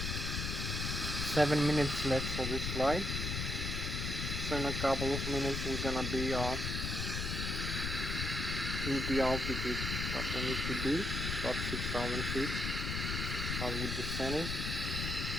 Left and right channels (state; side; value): noise; left; rumble, 2 dB below the sound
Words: 7 minutes left for this flight. So in a couple of minutes we're gonna be in the altitude that we need to be, about 6,000 feet. As we descending,